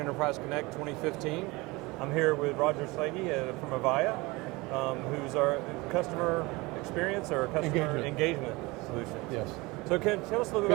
Connect 2015. I'm here with Roger Slagy from Avaya, who's our customer experience or customer engagement solution. Yes. So can you tell us a little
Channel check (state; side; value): quieter; left; 23.3 dB